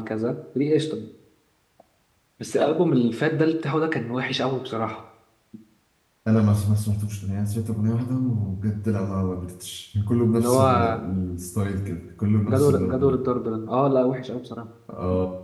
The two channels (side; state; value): both; identical; correlation 1.00